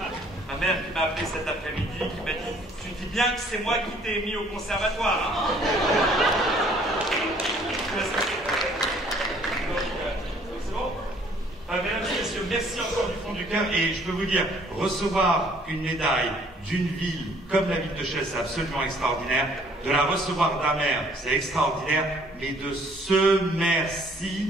Ma mère qui m'a appelé cet après-midi, qui m'a dit « Tu dis bien que c'est moi qui t'ai mis au conservatoire, hein ?» C'est bon? Mesdames et messieurs, merci encore du fond du cœur. Et je peux vous dire, recevoir une médaille d'une ville comme la ville de Chelles, c'est absolument extraordinaire. De la recevoir d'un maire, c'est extraordinaire. Mais de ce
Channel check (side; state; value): both; normal; correlation 0.59